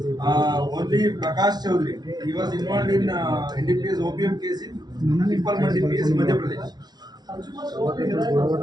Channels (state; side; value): late; left; 0.19 ms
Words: Only Prakash Chaudhary he was involved in NDPS OPM case in Pippal Mandi PS Madhya Pradesh.